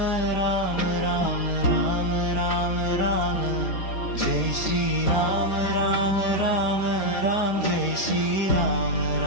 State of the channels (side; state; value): right; late; 4.6 ms